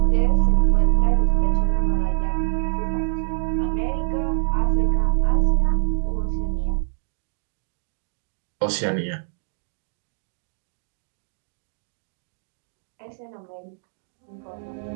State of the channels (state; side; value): silent; left; digital silence